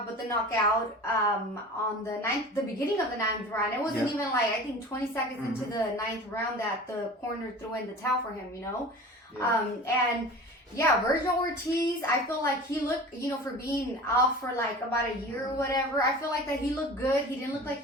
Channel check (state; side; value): normal; both; correlation 0.38